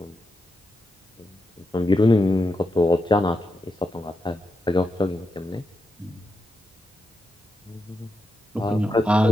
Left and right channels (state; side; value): normal; both; correlation 0.86